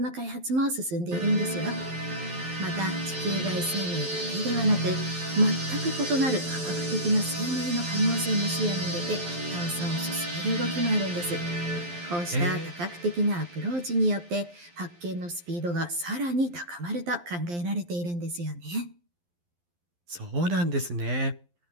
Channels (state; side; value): late; left; 12 ms